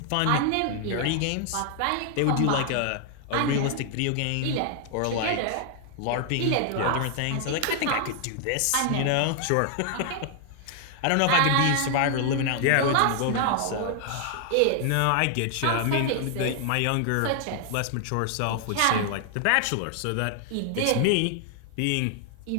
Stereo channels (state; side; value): different; both; correlation 0.00